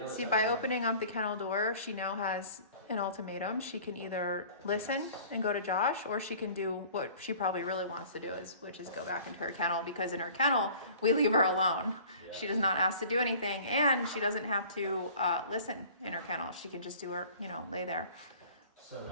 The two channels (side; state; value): both; inverted; correlation -0.47